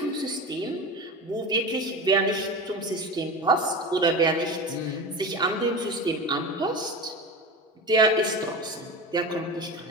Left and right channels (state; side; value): normal; both; correlation 0.27